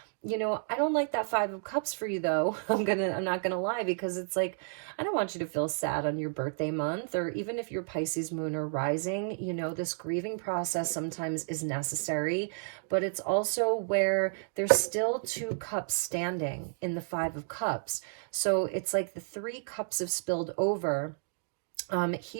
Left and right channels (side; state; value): left; silent; digital silence